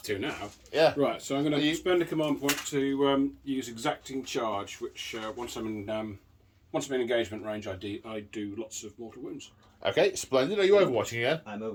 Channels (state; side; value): identical; both; correlation 1.00